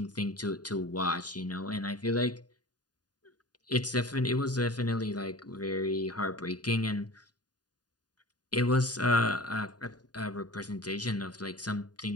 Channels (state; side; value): late; right; 0.69 ms